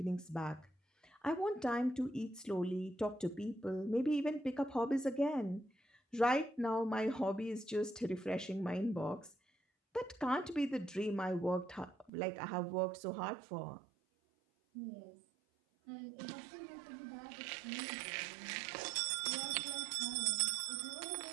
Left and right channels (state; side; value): drops out; left; at 12.1 s